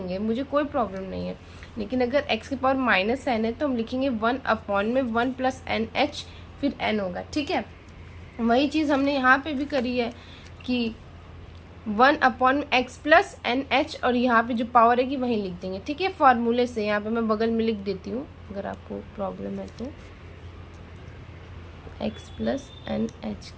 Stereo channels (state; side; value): identical; both; correlation 1.00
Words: मुझे कोई प्रॉब्लम नहीं है। लेकिन अगर x की पावर माइनस n है तो हम लिखेंगे 1/1 प्लस एन एच, फिर n होगा। ठीक है, वही चीज़ हमने यहाँ पे भी करी है कि 1/x प्लस एन एच, और यहाँ पे जो पावर है कि वहीं लिख देंगे। ठीक है, फॉर्मूले से यहाँ पे मैं बगल में लिख देती हूँ अगर आपको प्रॉब्लम है तो, x प्लस एन एच